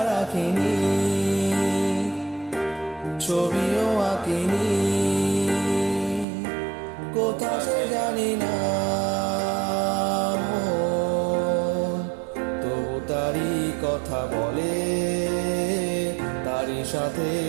রাখিনি, ছবিও আঁকিনি, কোথা সে জানি না মন, তবু তারই কথা বলে, তারই সাথে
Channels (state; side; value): drops out; left; at 6.2 s